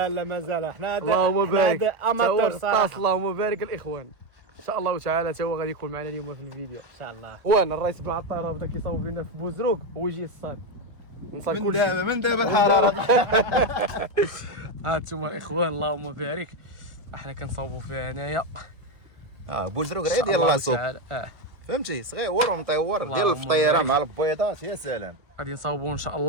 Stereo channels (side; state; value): left; late; 1.5 ms